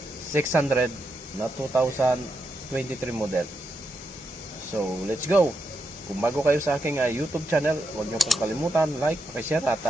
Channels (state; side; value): normal; both; correlation 0.84